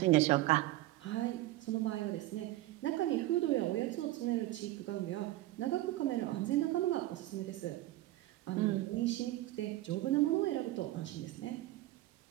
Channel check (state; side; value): quieter; left; 16.4 dB